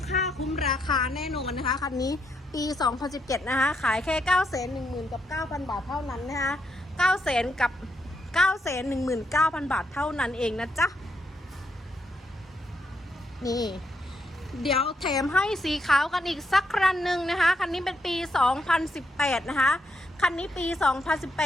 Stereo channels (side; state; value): both; normal; correlation 0.78